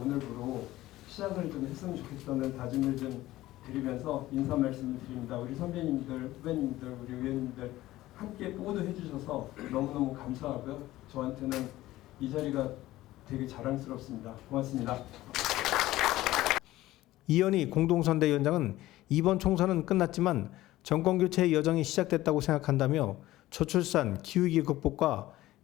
시작을 좀 했으면 좋겠다는 다짐을 좀 드리면서 인사 말씀을 드립니다. 우리 선배님들, 후배님들, 우리 의원님들 함께 모두 해주셔서 너무너무 감사하고요. 저한테는 이 자리가 되게 자랑스럽습니다. 고맙습니다. 이현희 공동선대위원장은 이번 총선은 끝났지만 정권교체의 여정이 시작됐다고 생각한다며 저출산, 기후위기 극복과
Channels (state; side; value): quieter; right; 16.2 dB